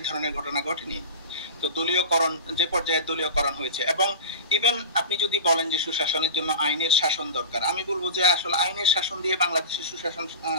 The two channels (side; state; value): both; inverted; correlation -0.31